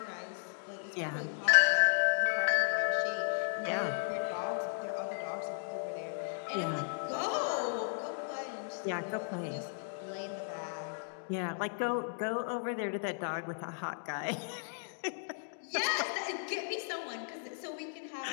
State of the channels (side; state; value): right; silent; digital silence